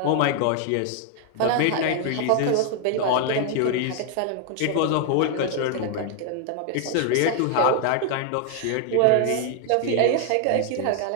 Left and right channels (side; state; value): both; different; correlation 0.00